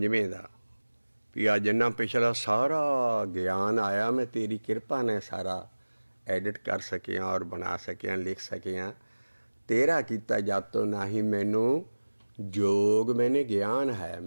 ਦਾ ਵੀ ਆ ਜਿੰਨਾ ਪਿਛਲਾ ਸਾਰਾ ਗਿਆਨ ਆਇਆ ਮੈਂ ਤੇਰੀ ਕਿਰਪਾ ਨੇ ਸਾਰਾ ਐਡਿਟ ਕਰ ਸਕਿਆ ਔਰ ਬਣਾ ਸਕਿਆ, ਲਿਖ ਸਕਿਆ। ਤੇਰਾ ਕੀਤਾ ਜਾਤੋਂ ਨਾ ਹੀ ਮੈਨੂੰ जोग मैंने ज्ञान है,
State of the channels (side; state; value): both; inverted; correlation -1.00